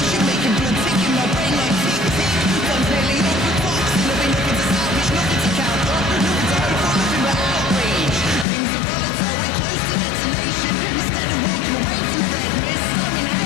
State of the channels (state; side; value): drops out; right; at 8.5 s